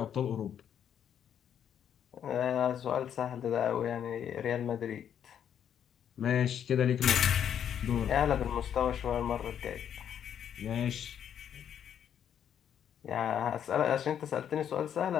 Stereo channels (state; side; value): quieter; right; 9.1 dB